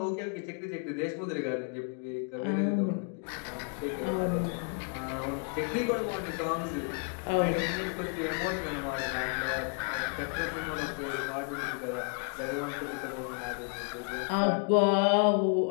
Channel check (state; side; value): quieter; right; 37.5 dB